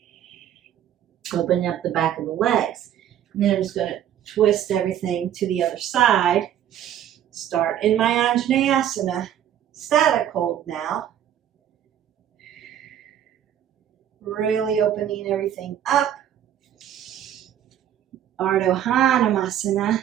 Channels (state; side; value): quieter; left; 10.5 dB